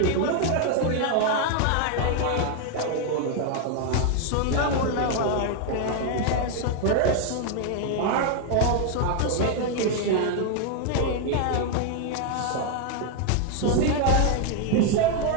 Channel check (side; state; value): both; different; correlation 0.00